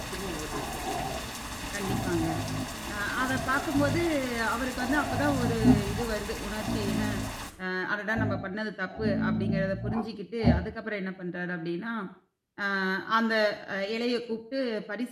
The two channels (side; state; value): both; identical; correlation 1.00